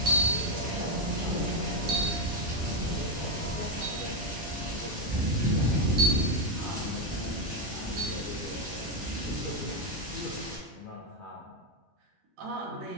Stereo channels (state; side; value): normal; both; correlation 0.07